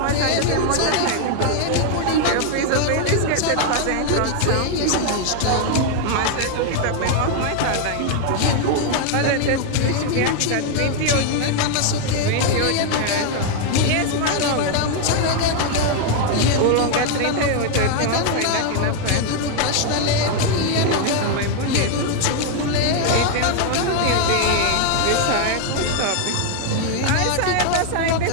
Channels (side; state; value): both; different; correlation 0.00